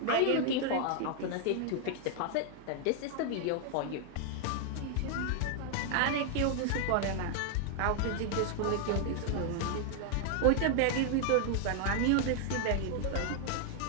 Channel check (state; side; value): different; both; correlation 0.00